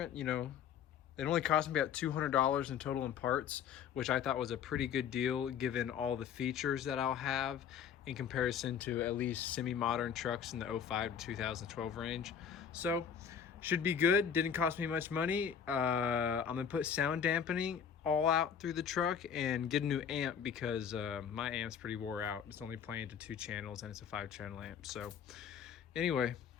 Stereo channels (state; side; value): quieter; right; 7.8 dB